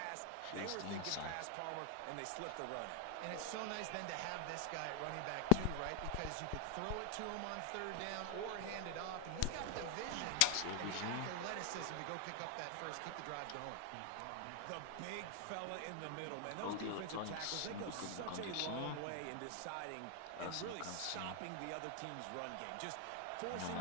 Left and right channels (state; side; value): different; both; correlation 0.00